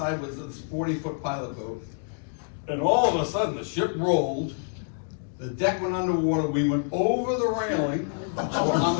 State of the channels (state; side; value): silent; right; digital silence